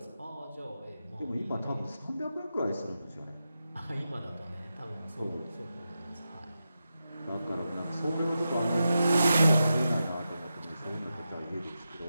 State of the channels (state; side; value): inverted; both; correlation -0.90